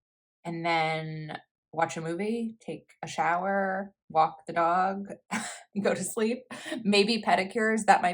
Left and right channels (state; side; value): identical; both; correlation 1.00